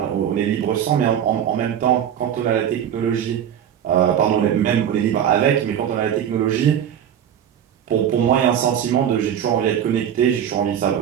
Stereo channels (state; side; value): quieter; left; 9.4 dB